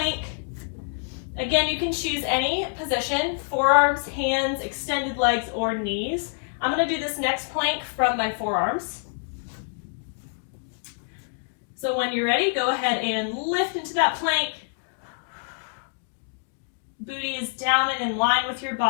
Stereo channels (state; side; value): silent; right; 61 dB below the other